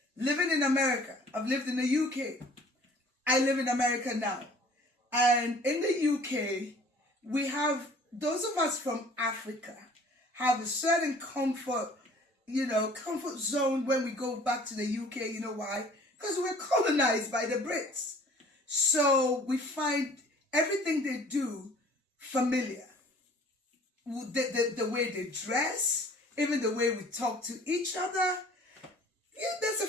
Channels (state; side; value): normal; both; correlation 0.51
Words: living in America. I've lived in the UK. I live in America now. And in the UK, we have, those of us from Africa have a certain comfort zone when we go back to the UK. You know why? Because we're colonized by the Brits. So we find everything they do familiar. The way they dress, even the way we talk to each other. Yeah, there's a